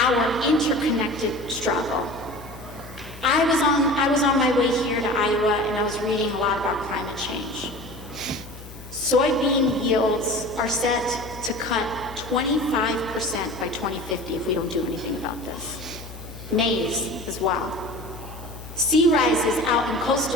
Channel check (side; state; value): left; noise; hum, 14 dB below the sound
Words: interconnected struggle. I was on my way here to Iowa, and I was reading a lot about climate change. Soybean yields are set to cut 25% by 2050 if we don't do anything about this. Maize as well. Sea rises out in